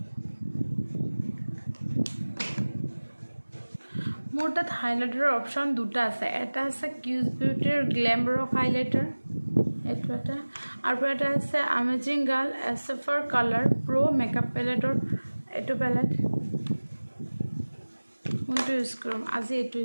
মোৰ তাত হাইলাইটাৰৰ অপশ্যন দুটা আছে। এটা আছে কিউজ বিউটিৰ গ্লেম ৰক হাইলাইটাৰ, এইটো এটা, আৰু এটা আছে আমেজিং গাৰ্ল এছএফৰ কালাৰ প্ৰ' মেকআপ পেলেটৰ এইটো পেলেট। কোনটো ইউজ কৰিম? আজি এইটো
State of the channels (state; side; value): inverted; both; correlation -1.00